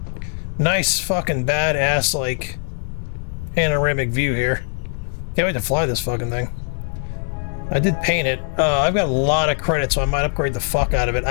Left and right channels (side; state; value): right; silent; 65 dB below the other